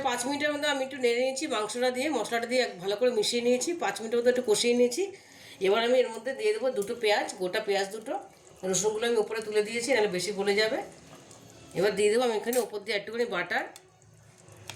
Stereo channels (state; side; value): identical; both; correlation 1.00